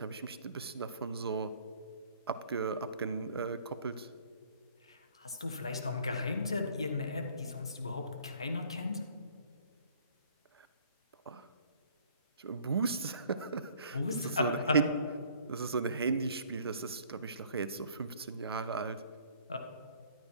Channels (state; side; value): inverted; both; correlation -0.56